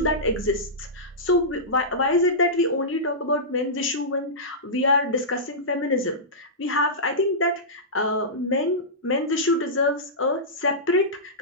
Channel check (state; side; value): normal; both; correlation -0.16